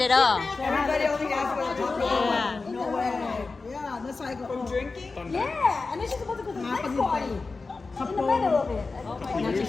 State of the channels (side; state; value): right; quieter; 4.0 dB